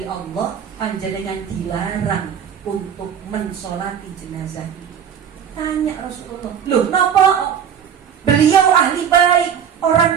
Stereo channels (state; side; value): quieter; left; 8.2 dB